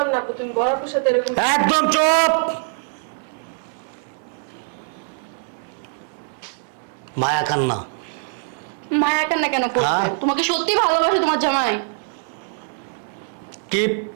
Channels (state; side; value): silent; left; 64 dB below the other